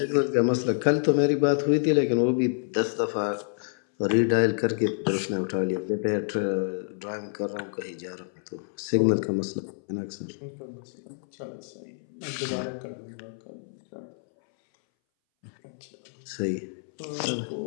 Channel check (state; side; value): silent; right; 60 dB below the other